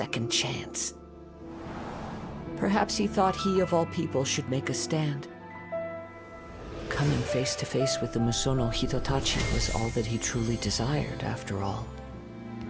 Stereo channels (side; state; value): both; identical; correlation 1.00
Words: chance. Perhaps he thought he of all people should make a stand. Coming face to face with the Musono Hitotachi was all that he truly desired, after all.